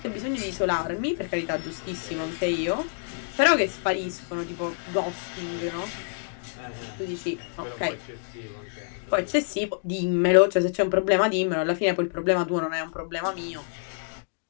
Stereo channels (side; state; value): right; silent; digital silence